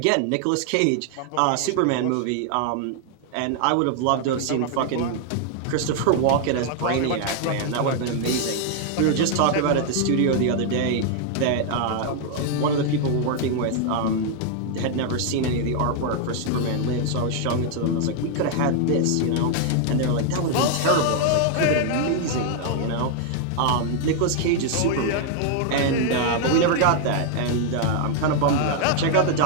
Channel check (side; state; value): both; different; correlation 0.00